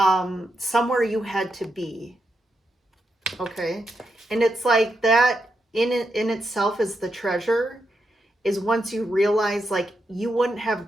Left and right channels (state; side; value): normal; both; correlation 0.84